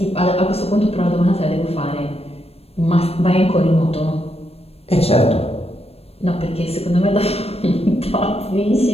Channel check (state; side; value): late; right; 0.29 ms